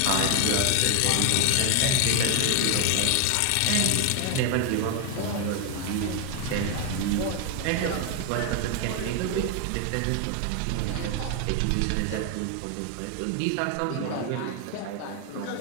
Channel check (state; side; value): different; both; correlation 0.01